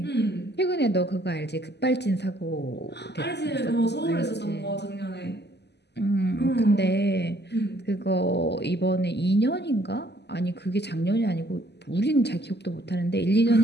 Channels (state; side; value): late; right; 0.50 ms